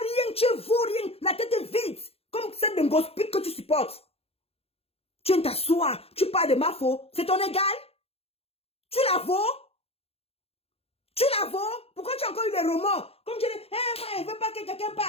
rien, tu vaux rien. La tête est vide. Comme celle d'un gospel que tu supportes. Tu viens t'asseoir. Tu parles de ma faux. C'est ton égal. Tu la vaux. Tu la vaux. Pourquoi tu as encore eu les romans? Comme tu dis, moi, je ne veux pas que quelqu'un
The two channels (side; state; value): right; late; 0.29 ms